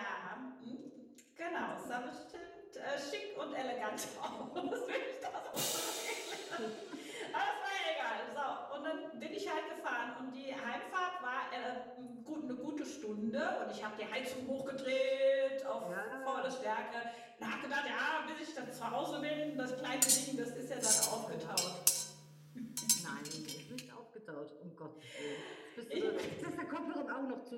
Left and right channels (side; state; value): both; identical; correlation 1.00